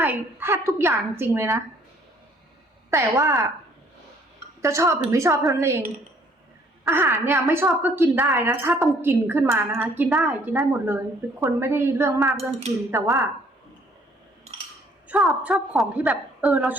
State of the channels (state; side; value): normal; both; correlation 0.61